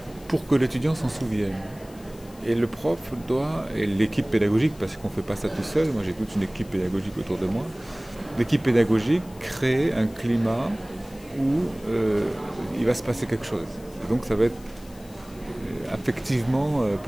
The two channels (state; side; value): noise; left; hiss, 24 dB below the sound